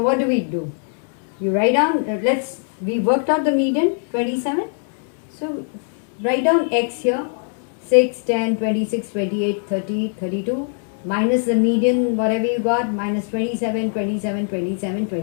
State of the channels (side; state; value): right; silent; 57 dB below the other